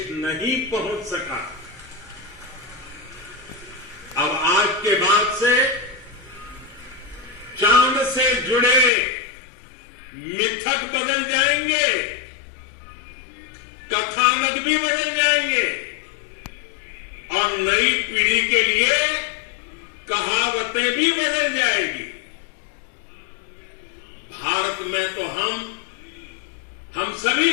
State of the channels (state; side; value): drops out; right; at 8.9 s